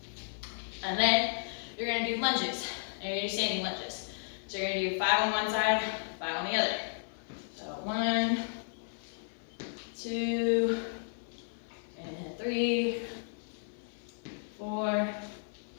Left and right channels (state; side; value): silent; right; 55 dB below the other